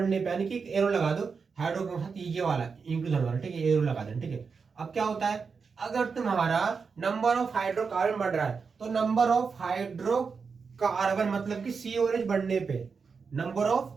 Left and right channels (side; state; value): left; quieter; 5.3 dB